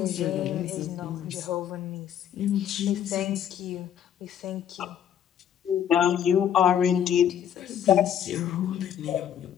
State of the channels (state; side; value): quieter; right; 9.5 dB